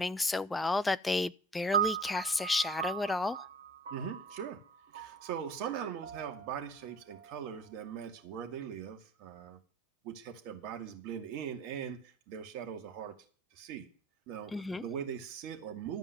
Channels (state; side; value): normal; both; correlation 0.48